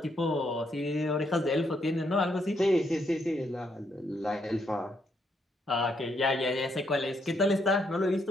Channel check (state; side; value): normal; both; correlation 0.75